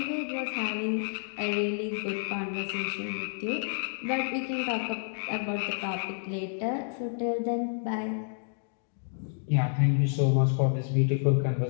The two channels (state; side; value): silent; right; digital silence